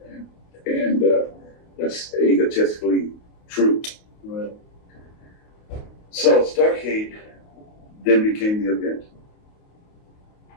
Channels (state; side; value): late; right; 28 ms